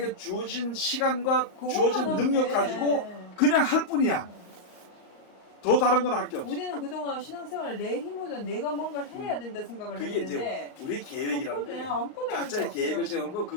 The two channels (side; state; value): right; late; 38 ms